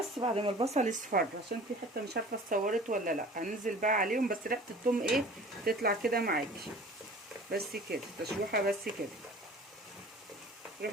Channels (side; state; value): both; normal; correlation 0.44